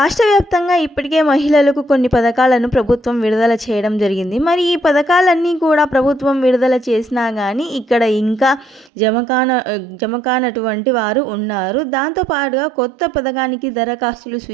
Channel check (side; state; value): left; drops out; at 8.9 s